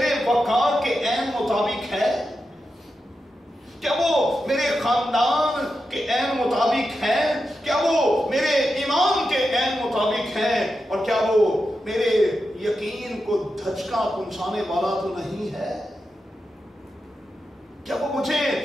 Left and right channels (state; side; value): normal; both; correlation 0.89